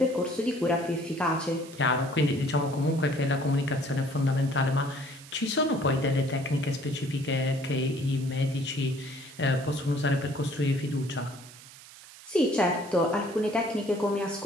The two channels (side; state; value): right; noise; hiss, 19 dB below the sound